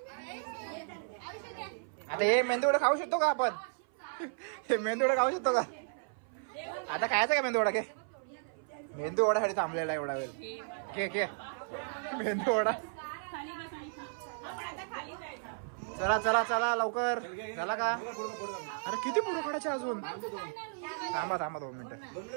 आता हे मेंदूवडा खाऊ शकतो का आपण? हे मेंदूवडा खाऊ शकतो का? आता खायचा का मेंदूवडा? घे, मेंदूवडासाठी थांबलेला एवढा वेळ. घे घे मेंदूवडा. चला चला चला लवकर. झाला का? अरे किती पुढे काढायचे अजून? थांबा थांबा 2 मिनिटं,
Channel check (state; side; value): silent; left; 55 dB below the other